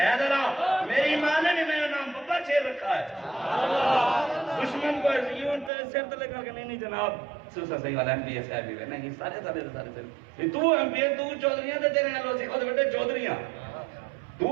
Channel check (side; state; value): left; drops out; at 5.7 s